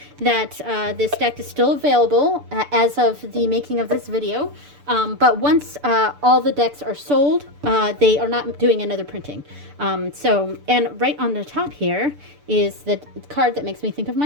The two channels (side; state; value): left; late; 6.8 ms